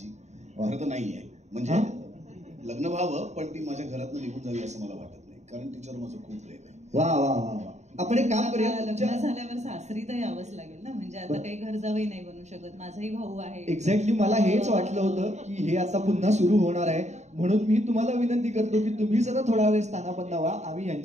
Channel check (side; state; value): left; late; 0.33 ms